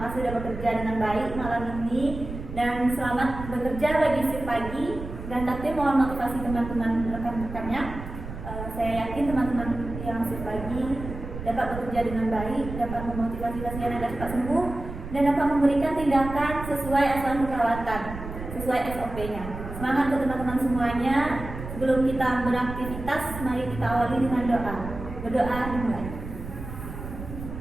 kasih sudah bekerja dengan baik malam ini dan selamat bekerja bagi shift pagi. Dan kantin mohon motivasi teman-teman rekan-rekannya. Saya yakin teman-teman yang shift pagi dapat bekerja dengan baik, dapat memotivasi pasien agar cepat sembuh, dan dapat memberikan tindakan sesuai asuhan keperawatan, sesuai SOP-nya. Semangat untuk teman-teman semuanya. Sebelum kita beraktivitas, mari kita awali dengan doa. Berdoa dimulai.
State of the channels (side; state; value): right; noise; rumble, 9 dB below the sound